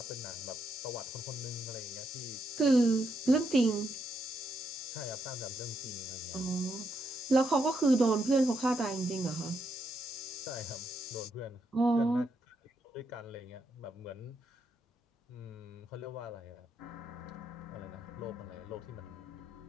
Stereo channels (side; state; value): both; normal; correlation 0.79